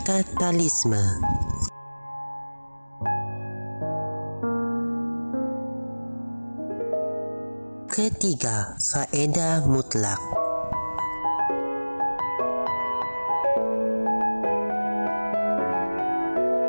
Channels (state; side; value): inverted; both; correlation -1.00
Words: Ketiga, faedah mutlak.